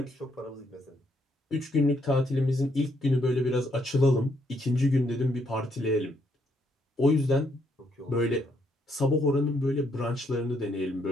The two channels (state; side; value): normal; both; correlation 0.74